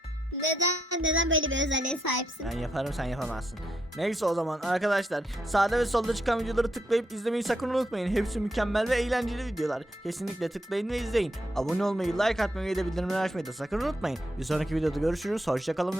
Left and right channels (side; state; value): both; normal; correlation 0.79